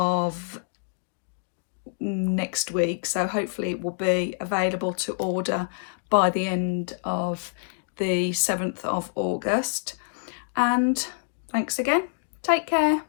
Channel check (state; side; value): silent; right; digital silence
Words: next week, so hopefully it will be available to order by the end of the 7th of August. And thanks again. Take care.